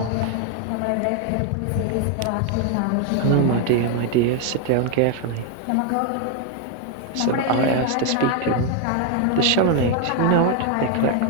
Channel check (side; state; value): both; different; correlation 0.01